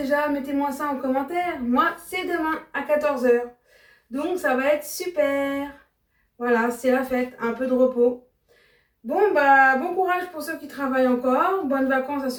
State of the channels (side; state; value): both; identical; correlation 1.00